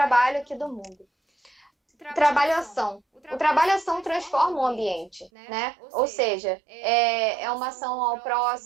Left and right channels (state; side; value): drops out; left; at 5.3 s